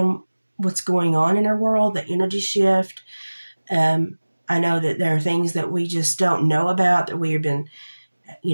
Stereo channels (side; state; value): both; inverted; correlation -1.00